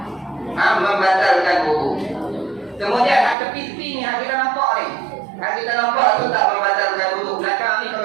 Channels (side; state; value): left; drops out; at 3.4 s